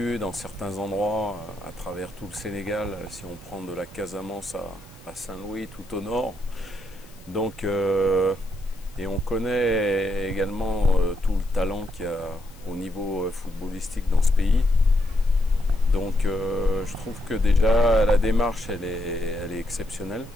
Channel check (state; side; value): noise; left; hiss, 25 dB below the sound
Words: dans certains endroits à travers tout le Sénégal, si on prend de la Casamance à Saint-Louis, tout au nord. Donc, et on connaît également tout le talent qu'il y a au niveau footballistique dans ce pays. Donc je trouve que déjà la démarche elle est exceptionnelle.